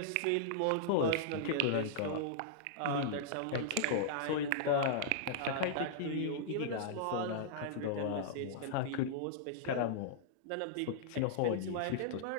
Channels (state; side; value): different; both; correlation -0.02